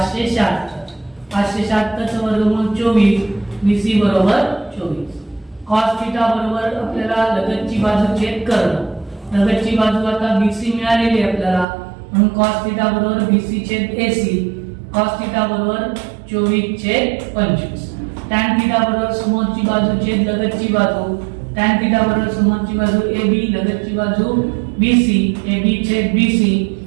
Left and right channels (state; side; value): drops out; left; at 11.7 s